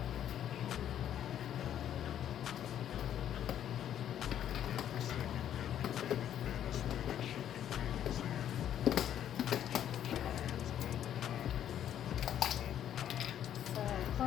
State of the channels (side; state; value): right; quieter; 10.4 dB